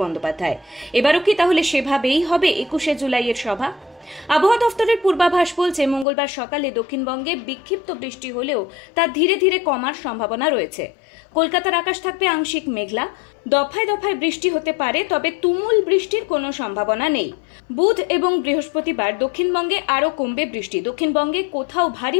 বন্দ্যোপাধ্যায়। এবারও কি তাহলে সেভাবেই হবে 21শে জুলাইয়ের সভা? আবহাওয়া দফতরের পূর্বাভাস বলছে মঙ্গলবার সকালে দক্ষিণবঙ্গে বিক্ষিপ্ত বৃষ্টি হলেও তা ধীরে ধীরে কমার সম্ভাবনা রয়েছে। কলকাতার আকাশ থাকবে আংশিক মেঘলা, দফায় দফায় বৃষ্টি হতে পারে, তবে তুমুল বৃষ্টির কোনো সম্ভাবনা নেই। বুধ এবং বৃহস্পতিবার দক্ষিণবঙ্গে আরও কমবে বৃষ্টি, দক্ষিণবঙ্গে কোথাও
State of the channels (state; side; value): drops out; right; at 6.1 s